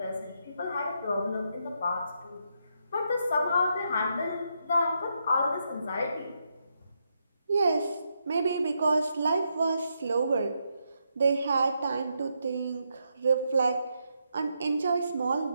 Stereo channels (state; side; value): inverted; both; correlation -0.80